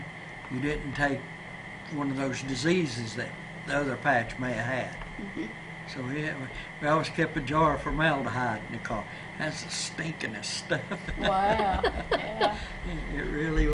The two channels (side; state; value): both; identical; correlation 1.00